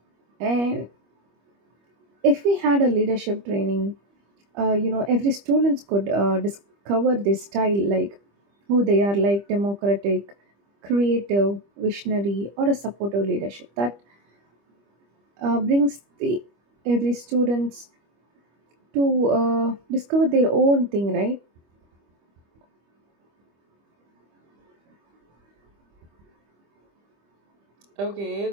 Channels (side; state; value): left; late; 25 ms